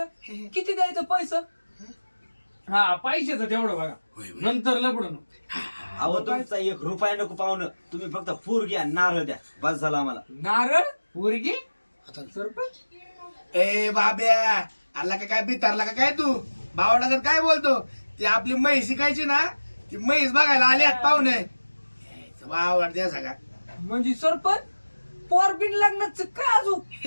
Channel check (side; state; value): both; inverted; correlation -1.00